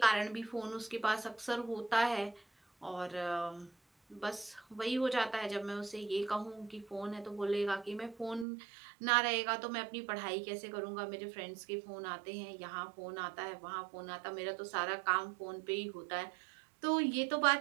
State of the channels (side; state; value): left; drops out; at 8.5 s